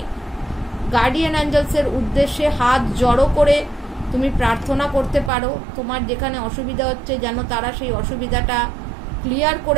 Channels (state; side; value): drops out; left; at 5.3 s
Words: গার্ডিয়ান অ্যাঞ্জেলসের উদ্দেশ্যে হাত জড়ো করে তুমি প্রার্থনা করতে পারো। তোমার যেখানে অসুবিধা হচ্ছে যেন তারা সেই অসুবিধাটা ক্লিয়ার